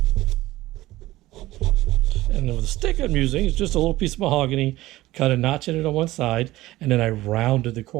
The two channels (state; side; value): quieter; left; 17.2 dB